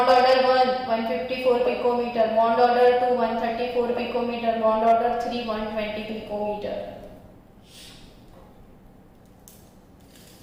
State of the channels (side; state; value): both; identical; correlation 1.00